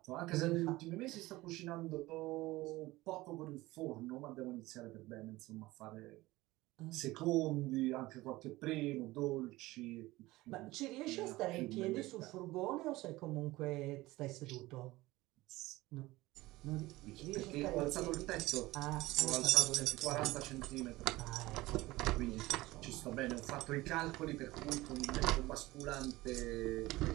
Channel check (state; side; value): quieter; left; 19.1 dB